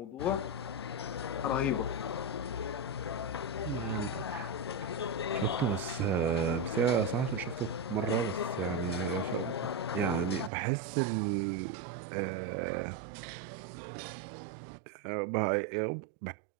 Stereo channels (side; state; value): left; drops out; at 10.5 s